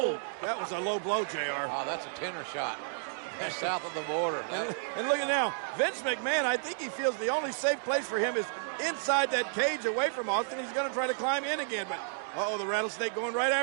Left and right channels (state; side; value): silent; left; digital silence